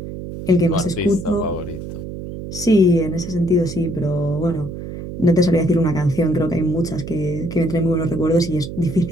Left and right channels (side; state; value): right; noise; hum, 9 dB below the sound